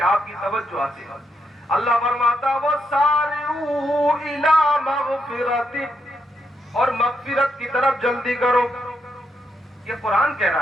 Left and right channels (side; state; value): both; normal; correlation 0.80